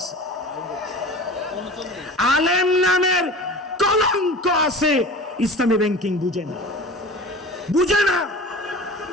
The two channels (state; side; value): normal; both; correlation 0.37